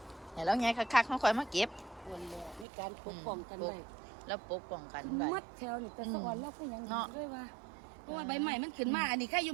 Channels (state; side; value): drops out; left; at 2.7 s